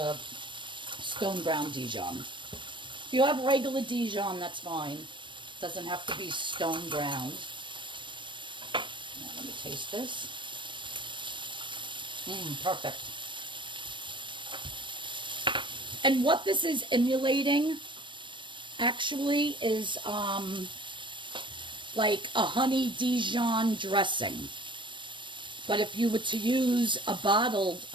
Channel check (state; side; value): late; left; 0.23 ms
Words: stone ground Dijon. If you have regular Dijon, that's fine. Doesn't have to be stone ground. Now let me taste this. Perfect. And what this is emulating actually is like a honey Dijon dressing. But if you were to use a bottled